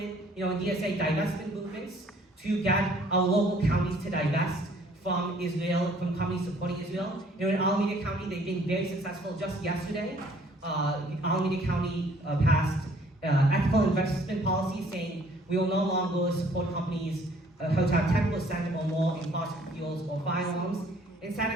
in DSA, divestment movements to get our local counties to divest from Israel, from companies supporting Israel. In Alameda County, they've been very successful. Just yesterday, Alameda County passed ethical investment policy saying we will no longer support companies who have 10% or more in fossil fuels or firearms. In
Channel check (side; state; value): both; normal; correlation 0.59